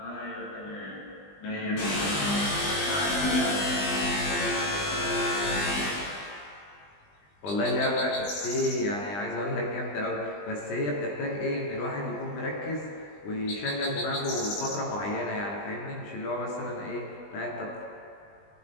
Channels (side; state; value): right; late; 20 ms